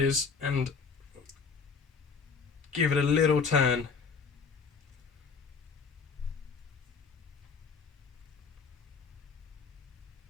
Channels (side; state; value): right; quieter; 5.3 dB